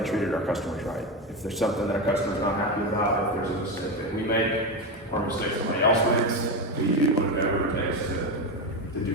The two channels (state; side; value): normal; both; correlation 0.15